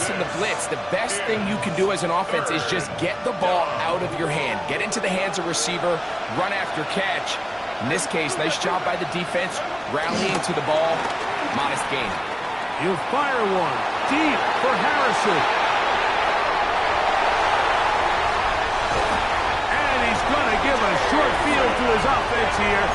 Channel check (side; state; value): both; identical; correlation 1.00